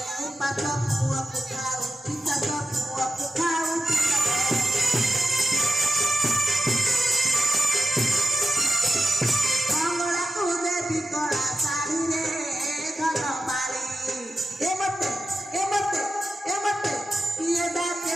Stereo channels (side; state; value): both; normal; correlation 0.90